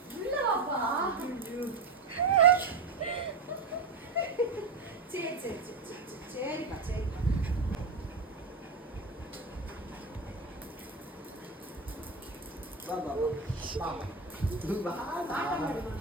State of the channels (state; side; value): quieter; left; 3.9 dB